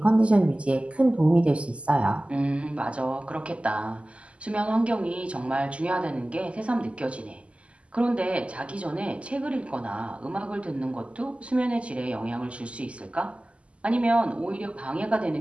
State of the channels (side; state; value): left; late; 0.058 ms